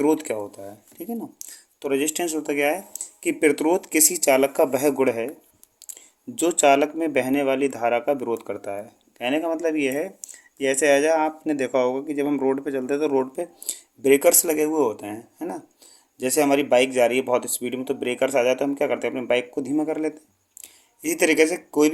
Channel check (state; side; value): identical; both; correlation 1.00